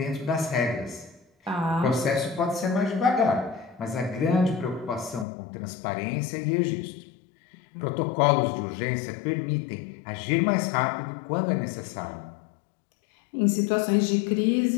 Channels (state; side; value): drops out; right; at 5.2 s